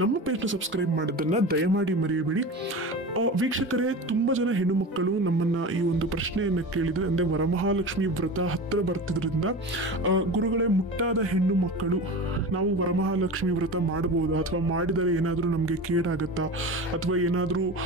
ನಮ್ಮ ಪೇಜ್ನ ಸಬ್ಸ್ಕ್ರೈಬ್ ಮಾಡೋದನ್ನ ದಯಮಾಡಿ ಮರೆಯಬೇಡಿ. ವೀಕ್ಷಕರೇ, ತುಂಬ ಜನ ಹೆಣ್ಣು ಮಕ್ಕಳು ನಮ್ಮನ್ನ ಈ ಒಂದು ಪ್ರಶ್ನೆಯನ್ನು ಕೇಳಿದರೆ, ಅಂದರೆ ವರಮಹಾಲಕ್ಷ್ಮಿ ವ್ರತ ಹತ್ತಿರ ಬರ್ತಿದ್ರಿಂದ ಗುರುಗಳೇ, ಮುಟ್ಟಾದ ಹೆಣ್ಣು ಮಕ್ಕಳು ನಾವು ವರಮಹಾಲಕ್ಷ್ಮಿ ವ್ರತ ಮಾಡಬಹುದಾ, ಅಥವಾ ಮಾಡಿದರೆ ಏನಾದರೂ ನಮಗೆ ಕೇಡಾಗತ್ತಾ, ಅಥವಾ ಏನಾದರೂ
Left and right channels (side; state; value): both; normal; correlation 0.30